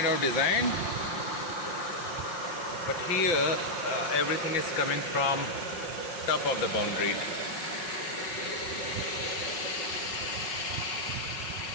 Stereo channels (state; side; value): late; right; 5.8 ms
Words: of designed. But here everything is coming from top of the boundary.